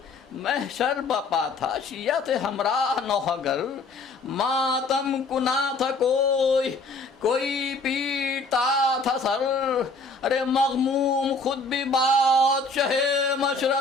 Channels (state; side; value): quieter; right; 3.5 dB